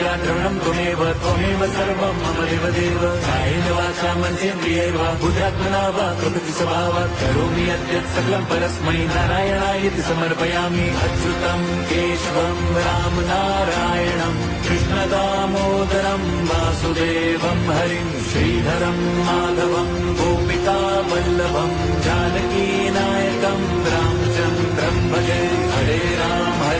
द्रविणं त्वमेव सर्वं मम देवदेव। कायेन वाचा मनसेन्द्रियैर् वा बुद्ध्यात्मना वा प्रकृति स्वभावात् करोमि यद्यत् सकलं परस्मै नारायणायेति समर्पयामि। अच्युतं केशवं राम नारायणं कृष्णदामोदरं वासुदेवं हरिं श्रीधरं माधवं गोपिका वल्लभं जानकीनायकं रामचन्द्रं भजे। हरे राम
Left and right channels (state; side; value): identical; both; correlation 1.00